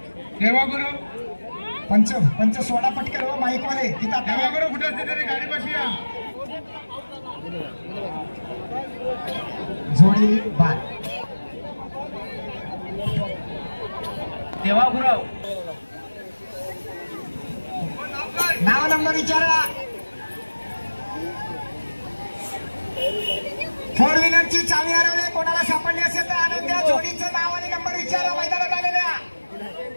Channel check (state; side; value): inverted; both; correlation -1.00